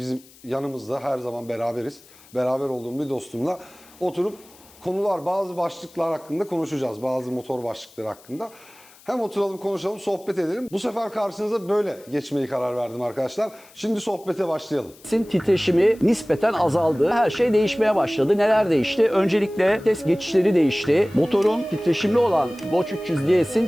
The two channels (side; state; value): left; noise; hiss, 25 dB below the sound